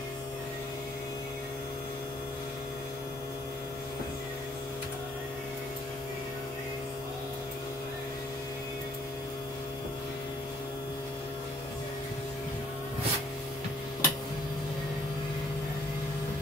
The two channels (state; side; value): normal; both; correlation 0.61